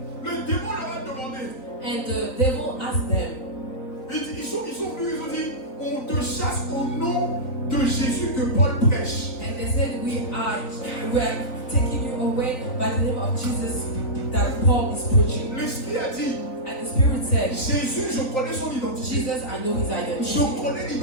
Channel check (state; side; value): late; right; 3.9 ms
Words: Le démon leur a demandé. And the devil asked them, Ils sont venus, ils ont dit, on te chasse au nom de Jésus que Paul prêche. and they said, we are taking you away by the name of Jesus that Paul is preaching. L'Esprit a dit, And the Spirit said, Jésus, je connais son identité. Jesus, I know his identity. Je connais